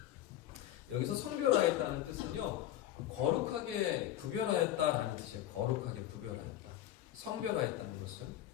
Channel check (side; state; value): right; quieter; 12.9 dB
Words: 여기서 성별하였다는 뜻은요 거룩하게 구별하였다라는 뜻이에요. 거룩하게 구별하였다. 성별하였다는 것은